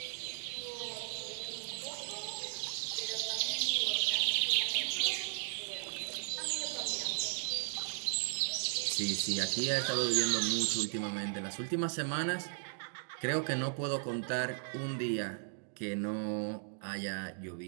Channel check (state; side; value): silent; left; digital silence